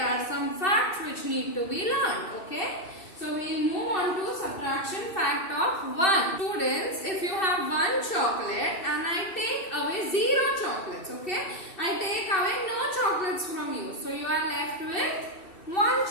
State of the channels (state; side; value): late; right; 2.7 ms